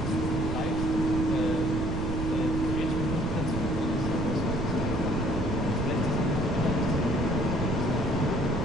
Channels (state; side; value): noise; right; rumble, 4 dB below the sound